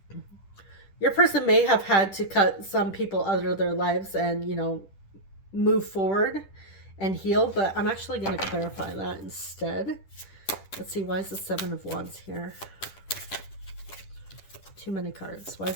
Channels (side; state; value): right; late; 10 ms